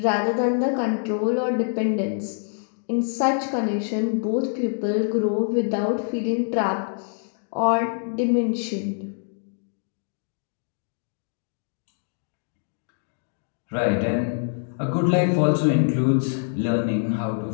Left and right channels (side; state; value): right; silent; digital silence